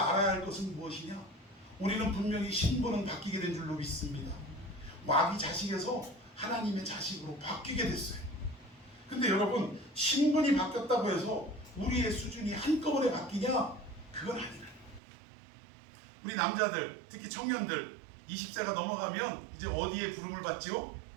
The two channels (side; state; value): left; drops out; at 15.0 s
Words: 알아야 할 것은 무엇이냐? 우리는 분명히 신분은 바뀌게 된 줄로 믿습니다. 마귀 자식에서 하나님의 자식으로 바뀌게 됐어요. 근데 여러분, 신분이 바뀌었다고 해서 우리의 수준이 한꺼번에 바뀌냐? 그건 아니라. 우리 남자들, 특히 청년들 20세가 넘어가면 이제 어디에 부름을 받죠?